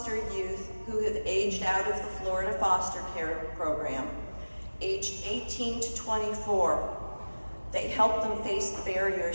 youth who have aged out of the Florida foster care program, aged 18 to 24. They help them face the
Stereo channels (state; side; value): inverted; both; correlation -1.00